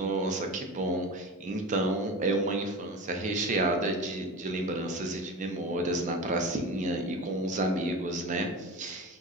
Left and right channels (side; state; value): both; normal; correlation 0.29